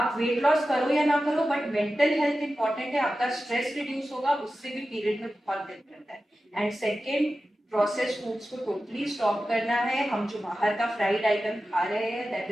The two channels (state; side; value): normal; both; correlation 0.94